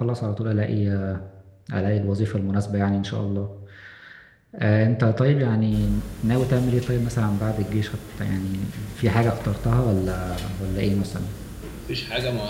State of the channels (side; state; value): both; identical; correlation 1.00